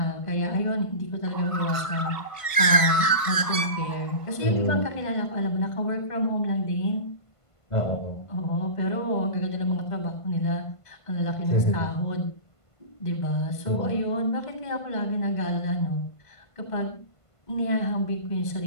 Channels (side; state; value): right; late; 1.5 ms